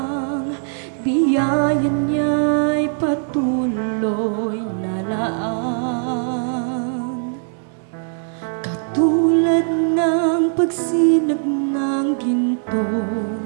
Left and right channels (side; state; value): left; silent; digital silence